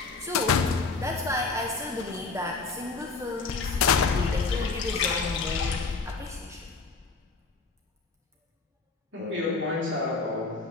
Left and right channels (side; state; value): right; quieter; 4.3 dB